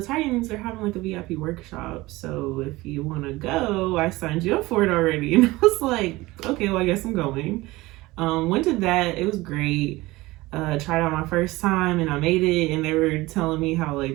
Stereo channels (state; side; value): quieter; left; 19.9 dB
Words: Titans are having like a VIP workshop. So if you want to go, I signed you up for it already. And I was like, okay, well, I guess I'm going. Went to that. It was great. Tried out my first time and I made it. And they were telling me how